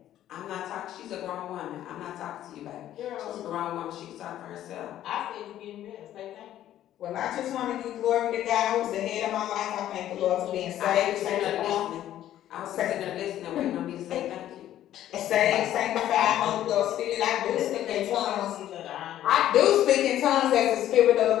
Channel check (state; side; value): quieter; right; 12.3 dB